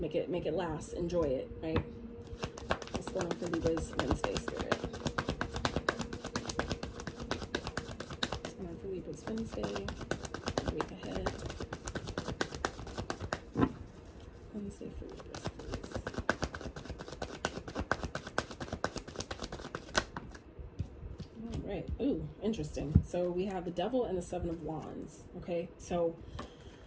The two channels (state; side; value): identical; both; correlation 1.00